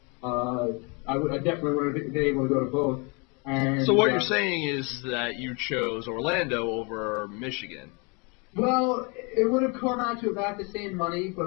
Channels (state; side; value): quieter; right; 31.5 dB